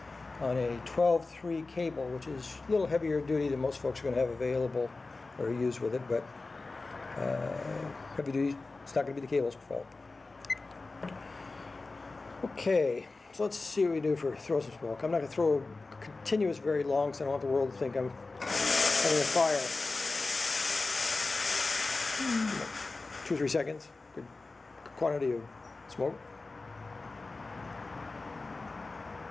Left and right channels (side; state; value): right; quieter; 3.6 dB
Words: on a 12-3 cable, which is a little heavier duty than most folks are going to have available or use with it, but heavy duty, it's not going to be the cable's fault. Okay, so let's see what we do for throw some smoke. I'm not going to throw continuous very long because I don't want the world to think I'm having a fire. 2 or 3 seconds, good quantity of smoke.